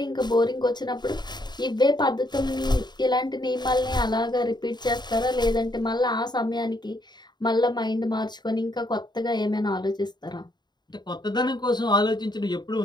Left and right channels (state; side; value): late; right; 0.21 ms